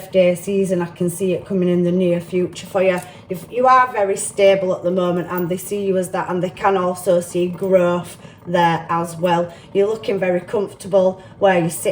season. I can see it coming in the near future for you. If you are very stable at the moment, and they see you as that, and they can also see growth there as well. You're looking very comfortable where you're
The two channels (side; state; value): both; identical; correlation 1.00